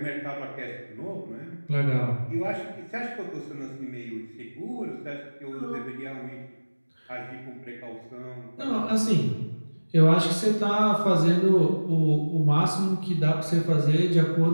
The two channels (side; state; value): both; inverted; correlation -1.00